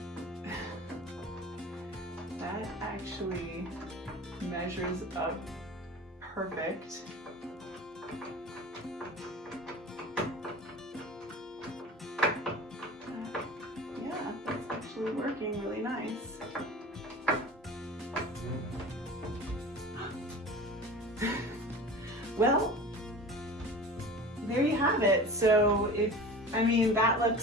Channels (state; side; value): normal; both; correlation 0.37